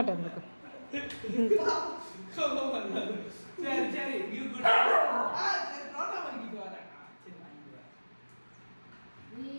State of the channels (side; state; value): both; inverted; correlation -1.00